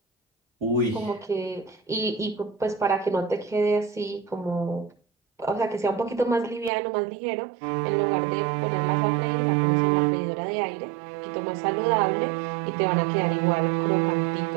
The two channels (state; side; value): drops out; left; at 6.7 s